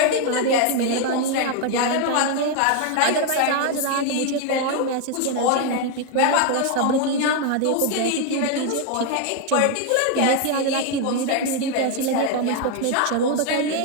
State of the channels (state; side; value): different; both; correlation 0.01